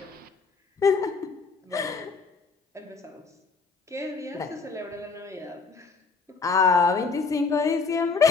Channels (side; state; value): right; quieter; 4.7 dB